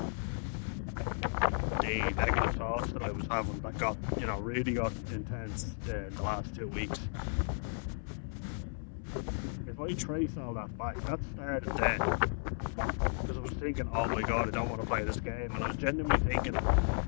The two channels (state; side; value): silent; right; 55 dB below the other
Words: the negative thoughts that I was having that got, you know, really got intense in the last 2 weeks. If I trace all that back, that started then. Because I was thinking, oh my god, I don't want to play this game. And I was genuinely thinking,